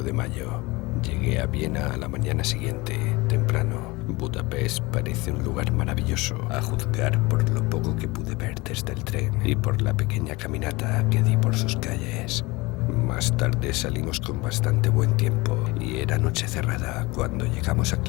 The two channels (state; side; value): quieter; right; 23.1 dB